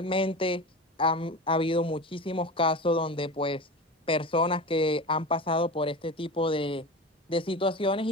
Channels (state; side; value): normal; both; correlation 0.29